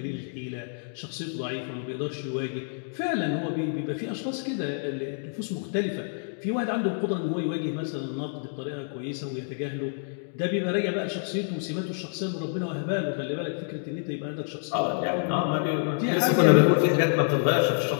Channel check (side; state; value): right; silent; digital silence